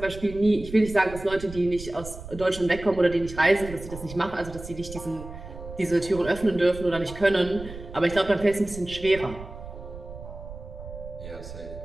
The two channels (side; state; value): right; noise; rumble, 13 dB below the sound